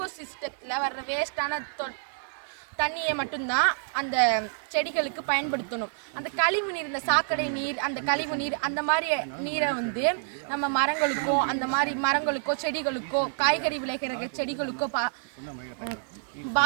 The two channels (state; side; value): silent; left; 57 dB below the other